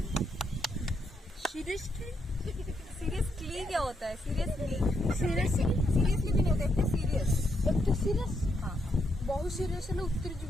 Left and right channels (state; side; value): normal; both; correlation 0.78